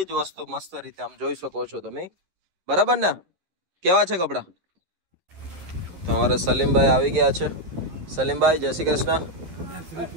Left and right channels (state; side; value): late; left; 11 ms